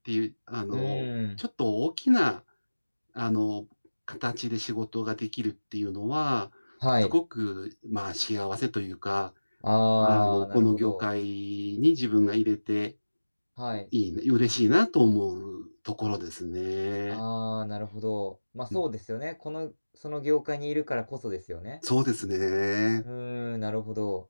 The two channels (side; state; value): both; inverted; correlation -1.00